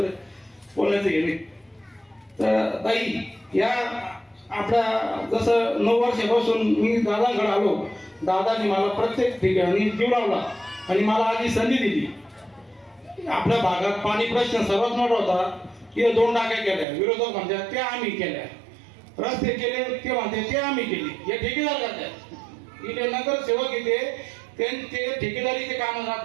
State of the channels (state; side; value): drops out; left; at 16.9 s